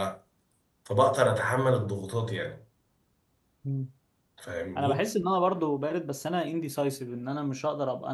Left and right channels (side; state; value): both; identical; correlation 1.00